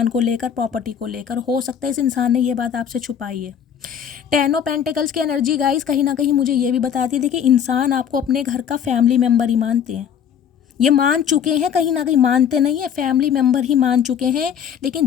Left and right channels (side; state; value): right; quieter; 8.4 dB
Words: को लेकर, प्रॉपर्टी को लेकर। हो सकता है इस इंसान ने ये बात आपसे छुपाई है। 10 ऑफ पेंटिकल्स की एनर्जी गाइस कहीं ना कहीं मुझे ये भी बताती है, देखिए इंसान आपको अपने घर का फैमिली मेम्बर ही मानते हैं, ये मान चुके हैं, कहीं ना कहीं मानते नहीं है, फैमिली मेम्बर ही मान चुके हैं।